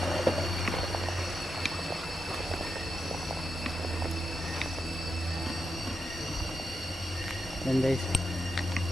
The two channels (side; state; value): both; normal; correlation 0.87